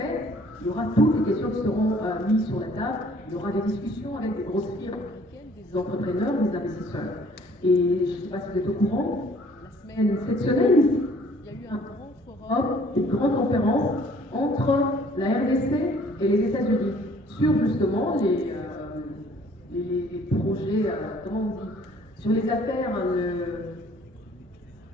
il y aura toutes les questions qui seront mises sur la table. Il y aura des discussions avec des grosses firmes, des entrepreneurs, des investisseurs. Et je ne sais pas si vous êtes au courant, cette semaine, il y a eu un grand forum, une grande conférence entre la RDC et les États-Unis sur justement les projets, comment on dit, sur les affaires,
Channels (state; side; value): normal; both; correlation 0.57